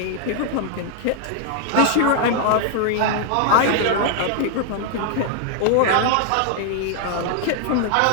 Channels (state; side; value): different; both; correlation 0.00